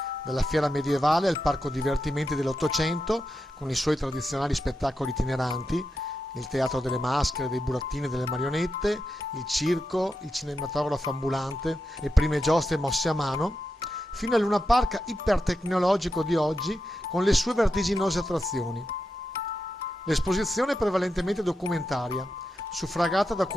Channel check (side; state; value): both; normal; correlation 0.88